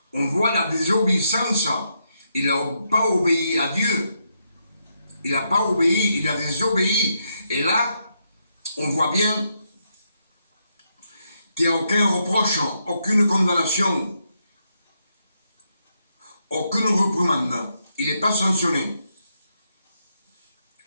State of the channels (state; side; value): inverted; both; correlation -0.80